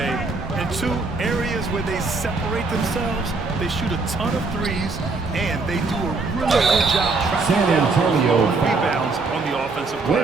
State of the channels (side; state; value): left; quieter; 3.8 dB